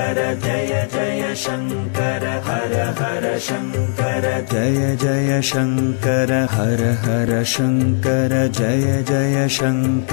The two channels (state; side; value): silent; right; 62 dB below the other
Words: जय जय शंकर हर हर शंकर जय जय शंकर हर हर शंकर जय जय